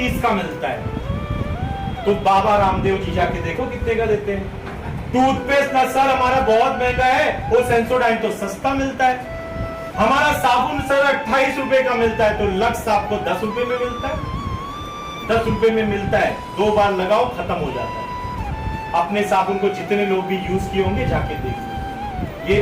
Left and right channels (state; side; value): identical; both; correlation 1.00